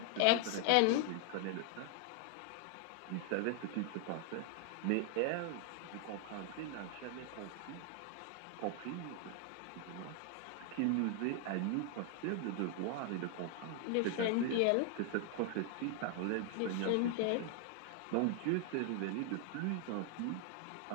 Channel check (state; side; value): different; both; correlation 0.00